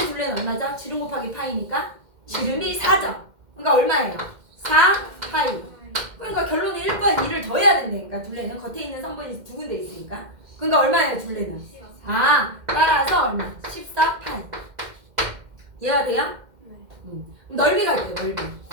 얼마죠? 지름 곱하기 파이니까 지름이 4죠. 그러니까 얼마예요? 4파이. 그러니까 결론은 1번 2를 더해야 된다니까. 둘레는 겉에 있는 성분이 두 군데 있으니까. 그러니까 얼마예요 둘레는? 따라서 얼마? 14파이. 이해가 돼요? 그럼 넓이가 있대요.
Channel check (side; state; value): left; late; 2.1 ms